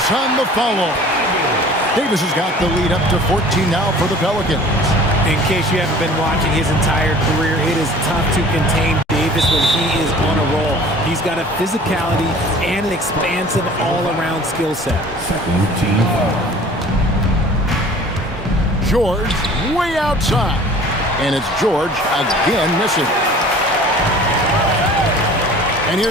on the follow. Davis has got the lead up to 14 now for the Pelicans. In case you haven't been watching his entire career, it is tough to contain Davis when he is on a roll. He's got a physicality and an expansive all-around skill set. George way outside. And it's George again missing. And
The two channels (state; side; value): normal; both; correlation 0.47